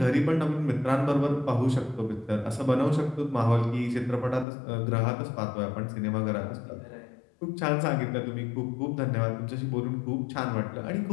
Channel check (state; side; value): drops out; right; at 4.5 s